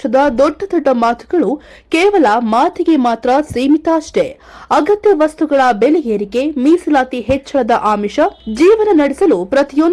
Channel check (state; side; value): identical; both; correlation 1.00